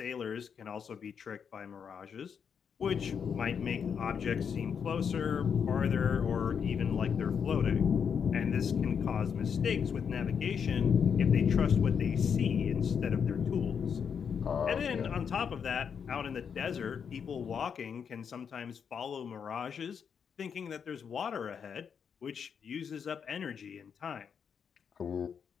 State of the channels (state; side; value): quieter; right; 7.0 dB